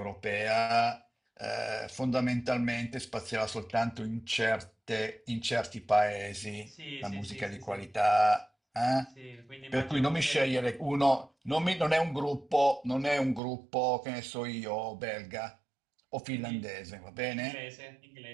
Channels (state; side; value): drops out; left; at 13.4 s